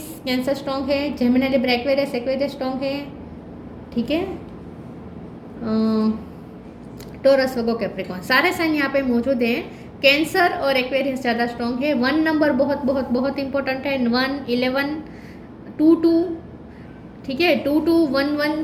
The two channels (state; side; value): identical; both; correlation 1.00